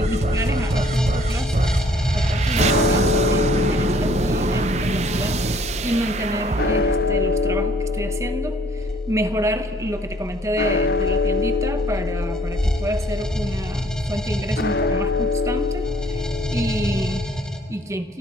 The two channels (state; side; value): normal; both; correlation 0.60